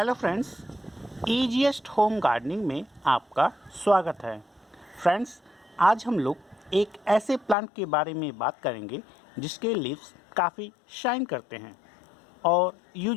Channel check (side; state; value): right; drops out; at 7.6 s